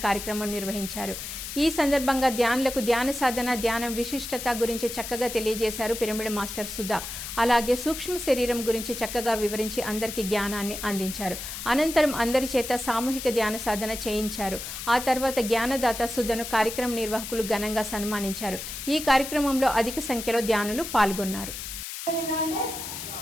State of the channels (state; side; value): noise; left; hiss, 8 dB below the sound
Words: కార్యక్రమం నిర్వహించారు. ఈ సందర్భంగా ధ్యానులకు ధ్యాన సాధన, ధ్యానం విశిష్టత గురించి చక్కగా తెలియజేశారు పిరమిడ్ మాస్టర్ సుధా. అలాగే సూక్ష్మ శరీరం గురించి చక్కగా వివరించి అందరికీ జ్ఞానాన్ని అందించారు. అనంతరం అందరి చేత సామూహిక ధ్యాన సాధన చేయించారు. ఆ తర్వాత జ్ఞానదాత సుధను కార్యక్రమ నిర్వాహకులు ఘనంగా సన్మానించారు. ఈ కార్యక్రమంలో అధిక సంఖ్యలో ధ్యానులు పాల్గొన్నారు.